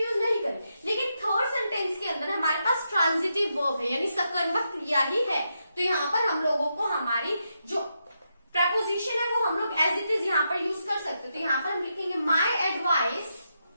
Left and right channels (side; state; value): both; inverted; correlation -0.84